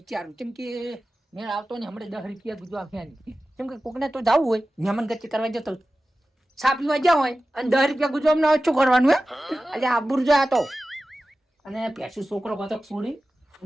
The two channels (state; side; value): normal; both; correlation 0.95